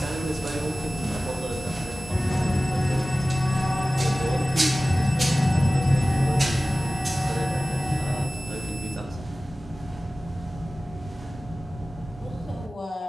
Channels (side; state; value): both; normal; correlation 0.96